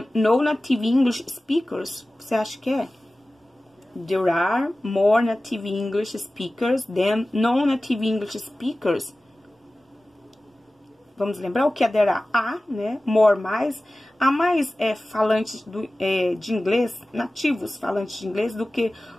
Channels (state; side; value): normal; both; correlation 0.97